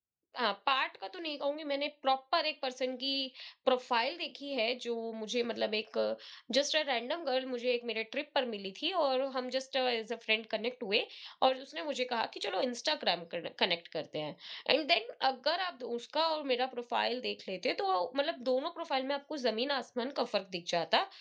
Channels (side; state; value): both; identical; correlation 1.00